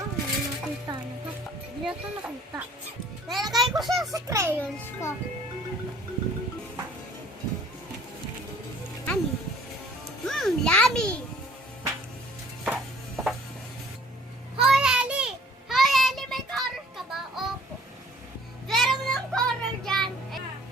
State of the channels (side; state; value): both; normal; correlation 0.54